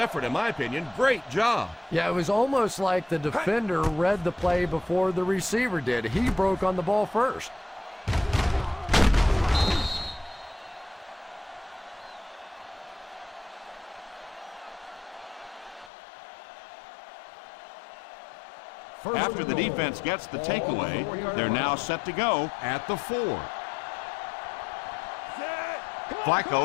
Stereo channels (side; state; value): right; drops out; at 15.9 s